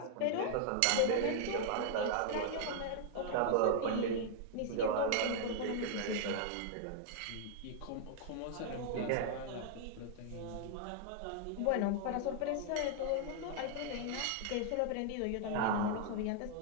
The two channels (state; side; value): different; both; correlation -0.01